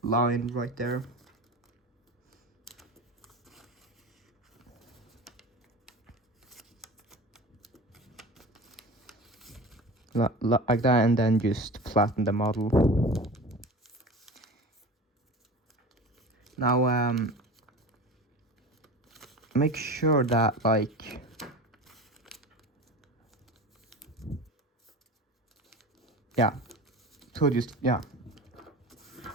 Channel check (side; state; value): both; normal; correlation 0.33